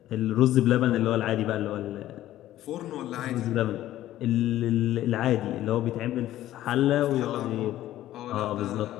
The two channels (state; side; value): quieter; right; 13.8 dB